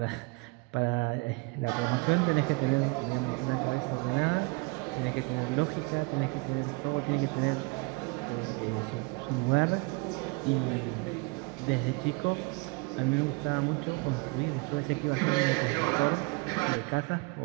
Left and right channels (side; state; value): left; quieter; 29.6 dB